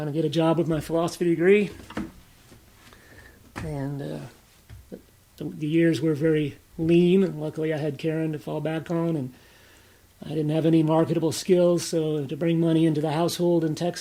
to get a job with my philosophy degree. And the years were very lean. Luckily, I had Karen to fall back on, and I didn't have any marketable skills, so to bring money into the household in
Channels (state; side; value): identical; both; correlation 1.00